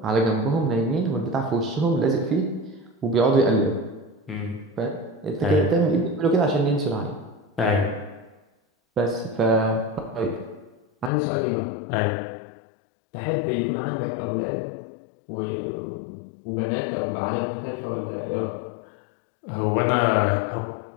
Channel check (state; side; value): drops out; right; at 11.1 s